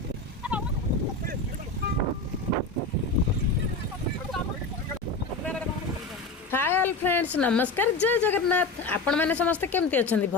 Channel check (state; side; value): quieter; right; 3.5 dB